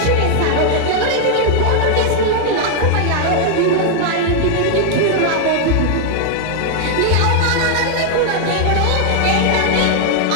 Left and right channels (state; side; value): different; both; correlation 0.00